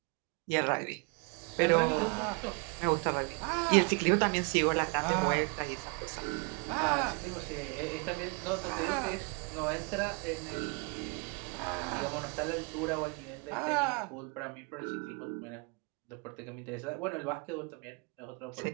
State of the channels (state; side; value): quieter; left; 33.1 dB